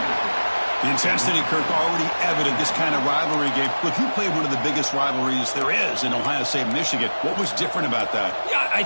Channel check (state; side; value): inverted; both; correlation -1.00